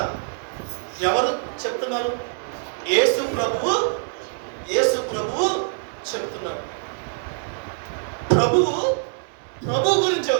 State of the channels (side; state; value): left; silent; digital silence